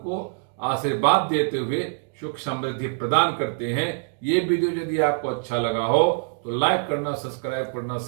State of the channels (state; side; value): silent; left; digital silence